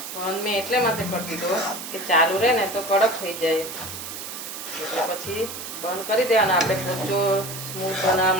બંધ મેં એટલે માટે કરી દીધો કે ચાલુ રહે ને તો કડક થઈ જાય, એટલે પછી બંધ કરી દેવાના. આપણે પોચો સ્મૂથ બનાવવા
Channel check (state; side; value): noise; right; hiss, 9 dB below the sound